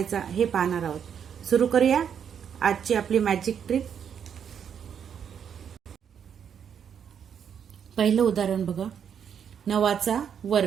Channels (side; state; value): left; quieter; 8.0 dB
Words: हे पाहणार आहोत। सुरू करूया आजची आपली मॅजिक ट्रिक। पहिलं उदाहरण बघा, 9 चा